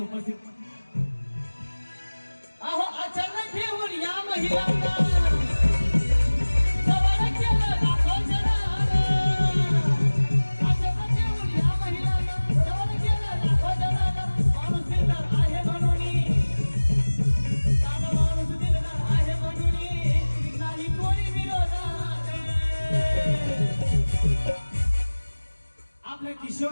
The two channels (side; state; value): both; inverted; correlation -1.00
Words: अहो अचानक घेऊन या महिलांना